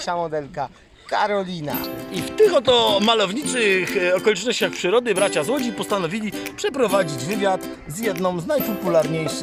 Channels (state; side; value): identical; both; correlation 1.00